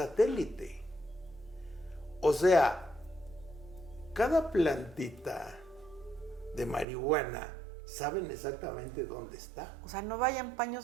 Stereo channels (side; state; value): left; drops out; at 6.9 s